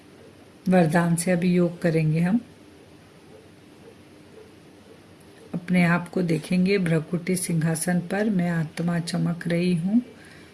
वरदान से अभी योग करेंगे हम। अपने आप को देखेंगे भ्रकुटी सिंहासन पर, मैं आत्मा चमक रही हूँ।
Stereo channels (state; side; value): identical; both; correlation 1.00